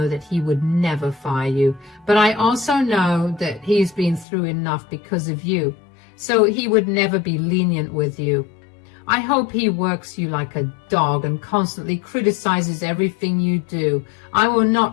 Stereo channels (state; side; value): drops out; right; at 4.2 s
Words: that he would never fire you, but I also know that he's been through enough because of you, so he would never be lenient with you. I hope he works you like a dog and constantly criticizes everything you do. I will